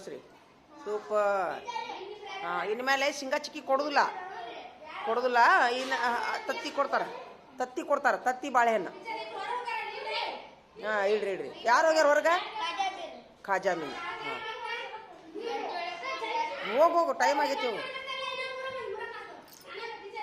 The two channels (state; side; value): identical; both; correlation 1.00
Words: ಸೂಪರ್. ಇನ್ನು ಮೇಲೆ ಶೇಂಗಾ ಚಿಕ್ಕಿ ಕೊಡೋದಿಲ್ಲ. ಇನ್ನು ತತ್ತಿ ಕೊಡ್ತಾರೆ. ತತ್ತಿ ಬಾಳೆಹಣ್ಣು. ಹಾಂ ಇಡ್ರಿ. ಯಾರು ಹೋಗ್ಯಾರ ಹೊರಗೆ? ಖಾಜಾ ಮೀನು. ಹಾಂ ಹೋಗು ಟೈಮ್ ಆಗೈತಿ. ಹೋಗು.